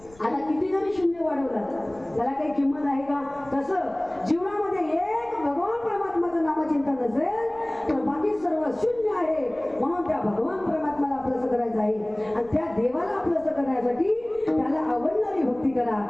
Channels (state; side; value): noise; left; rumble, 25 dB below the sound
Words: आता किती जरी शून्य वाढवला त्याला काही किंमत आहे का? तसं जीवनामध्ये एक भगवान परमात्माचं नामचिंतन नसेल तर बाकी सर्व शून्य आहे. म्हणून त्या भगवान परमात्माला आपलंसं करायचं आहे आणि त्या देवाला आपलंसं करण्यासाठी त्याला आवडणारी भक्ती करा.